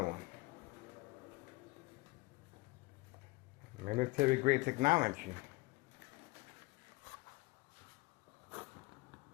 one. Military grade technology.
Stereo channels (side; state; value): right; quieter; 22.7 dB